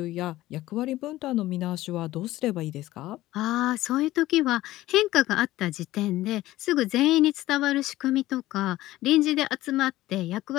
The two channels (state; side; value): quieter; right; 16.2 dB